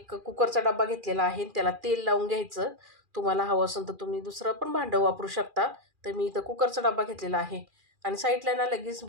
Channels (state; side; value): late; left; 2.4 ms